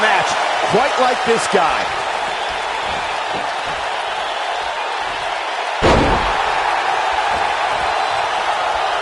match quite like this guy.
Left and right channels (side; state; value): both; identical; correlation 1.00